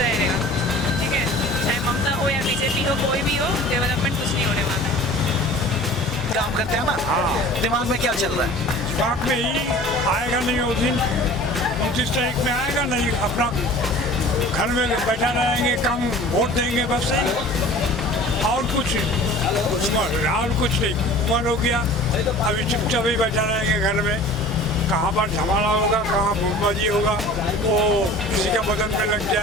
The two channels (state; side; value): normal; both; correlation 0.44